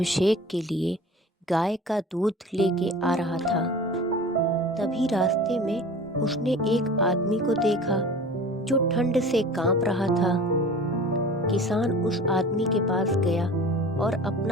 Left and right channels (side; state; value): both; normal; correlation 0.40